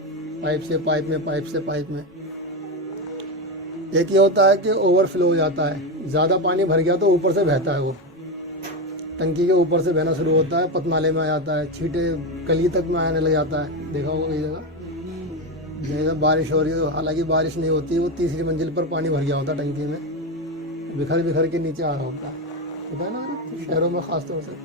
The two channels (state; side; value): normal; both; correlation 0.14